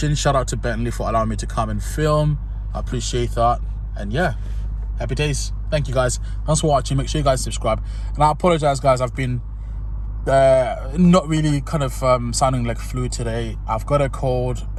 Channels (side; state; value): both; identical; correlation 1.00